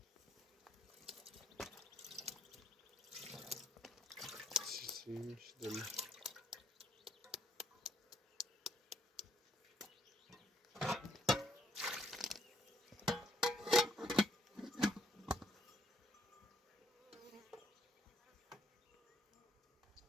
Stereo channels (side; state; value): both; normal; correlation 0.69